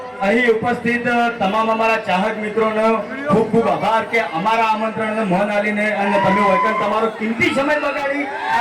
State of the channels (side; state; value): both; identical; correlation 1.00